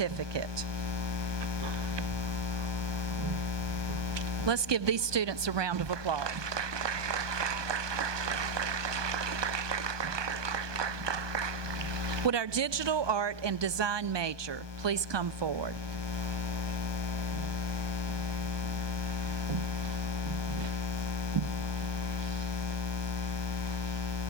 Let's give these students a round of applause. Would our digital art and design major please come forward?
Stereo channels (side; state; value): left; late; 1.2 ms